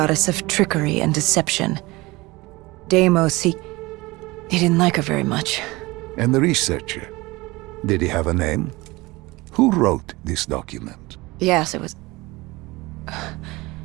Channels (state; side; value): quieter; left; 21.7 dB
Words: of trickery and deception. Deimos, he didn't like her very much. And the researcher? Did he have a name? Who wrote this document? Yes, it was...